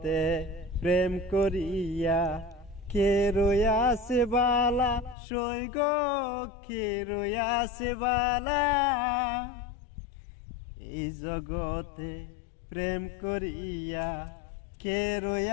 প্রেম করিয়া কে রয়াছে বালা, সই গো কে রয়াছে বালা। এই জগতে প্রেম করিয়া কে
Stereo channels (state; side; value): drops out; right; at 5.2 s